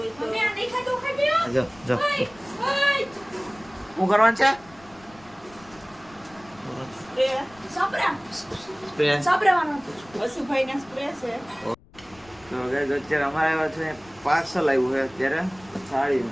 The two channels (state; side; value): noise; left; rumble, 25 dB below the sound